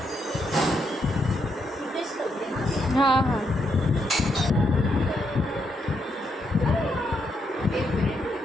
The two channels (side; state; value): both; normal; correlation 0.78